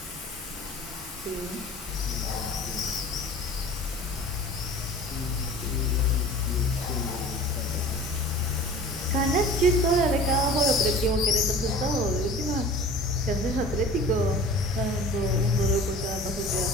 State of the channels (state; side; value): normal; both; correlation 0.41